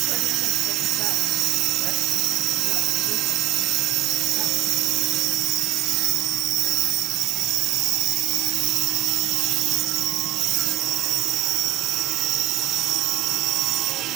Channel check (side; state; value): left; quieter; 16.2 dB